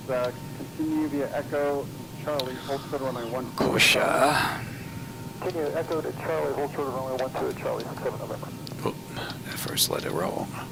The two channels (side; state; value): both; identical; correlation 1.00